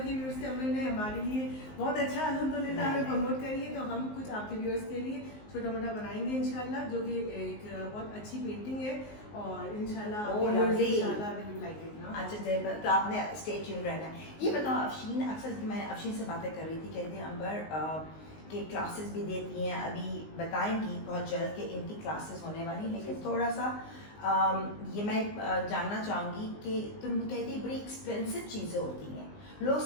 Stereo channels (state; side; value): late; right; 19 ms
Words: व्यूअर्स के, अंबर ने हमारे लिए बहुत अच्छा अल्हम्दुलिल्लाह हमें प्रमोट करिए, तो हम कुछ आपके व्यूअर्स के लिए छोटा मोटा बनाएंगे इंशाल्लाह, जो कि एक बहुत अच्छी पेंटिंग है, और इंशाल्लाह अच्छा तो आपने स्टे ट्यून रहना है। ये बताओ अफशीन, अक्सर मैं अफशीन से बातें कर रही थी, कहती हैं अंबर के क्लासेस भी देती हैं, अभी बताएंगी बहुत जल्द कि इनकी क्लासेस होने वाली, लेकिन थोड़ा सा ये मैं जानना चाहूँगी कि तुम कहती बड़ी एक्सपेंसिव चीज़ें होती हैं, लोग